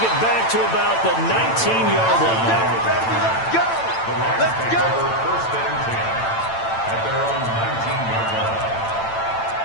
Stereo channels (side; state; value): right; late; 8.9 ms